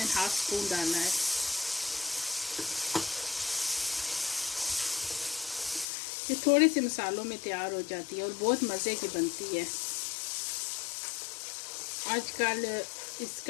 स्पून डाला है। ये थोड़े से मसालों में तैयार हो जाती है और बहुत मज़े की बनती है। आजकल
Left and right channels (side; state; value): right; drops out; at 5.9 s